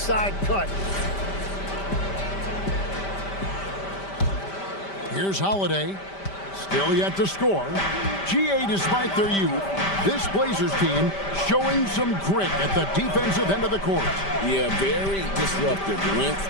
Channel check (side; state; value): right; late; 5.1 ms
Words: cut. Here's Holiday. Still yet to score. GA, despite their youth, this Blazers team showing some grit at the defensive end of the court. Yeah, very disruptive. Length